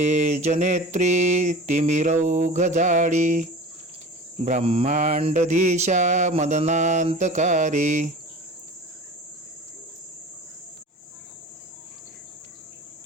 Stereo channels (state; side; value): normal; both; correlation 0.37